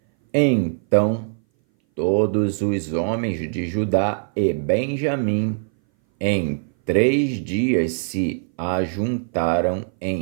Então todos os homens de Judá e Benjamim em 3 dias se ajuntaram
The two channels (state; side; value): silent; left; 60 dB below the other